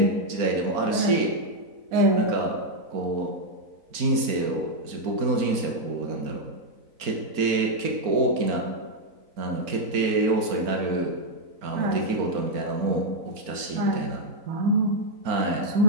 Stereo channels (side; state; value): left; late; 4.4 ms